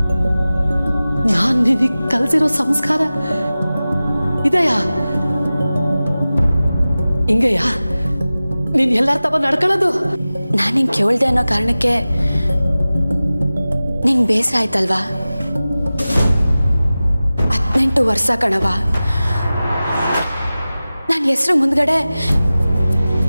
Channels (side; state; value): both; inverted; correlation -0.97